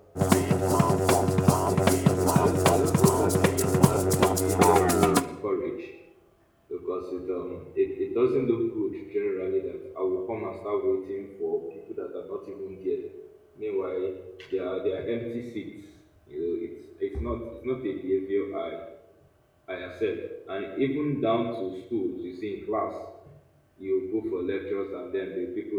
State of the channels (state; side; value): identical; both; correlation 1.00